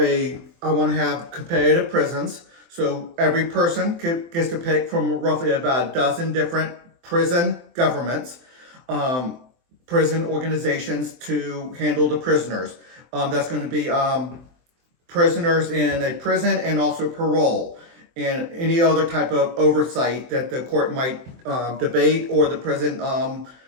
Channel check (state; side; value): late; left; 23 ms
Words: want to have competitive prisons. So every person gets to pick from roughly about a dozen different prison governments, prison organizations to handle the prisoners. That's going to be prisoners in a prison and also parole and any other type of oversight that the court might debate or the prison